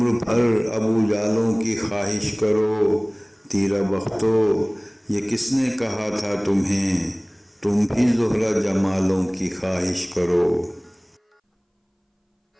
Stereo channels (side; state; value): both; identical; correlation 1.00